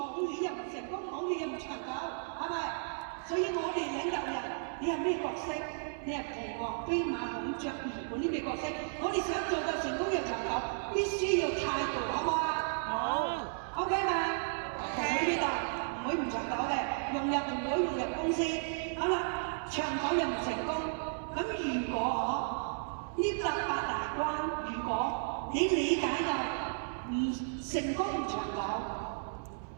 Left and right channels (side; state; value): left; silent; 55 dB below the other